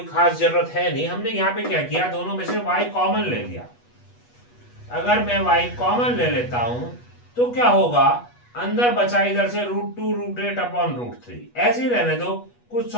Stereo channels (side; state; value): right; late; 8.2 ms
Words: खास जरूरत है नहीं। हमने यहाँ पे क्या किया, दोनों में से y कॉमन ले लिया। अगर मैं y कॉमन ले लेता हूं तो क्या होगा, अंदर बचा इधर से √2 √8 अपॉन √3, ऐसे ही रहने दो, कुछ